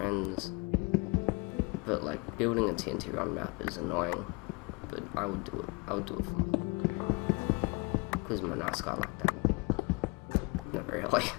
But like building a TNT run map is annoying. But I would do it. I would do it for fun. Because I'm a nice guy like that. Not really.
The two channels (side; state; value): right; quieter; 29.4 dB